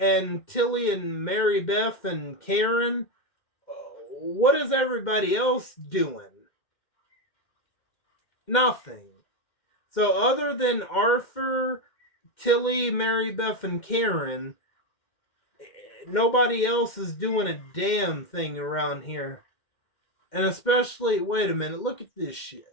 Tilly and Mary Beth and Karen, what is everybody else doing? Nothing. So other than Arthur, Tilly, Mary Beth, and Karen, nobody else is doing a damn thing around here. And especially, wait a minute, look at this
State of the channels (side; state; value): right; late; 2.1 ms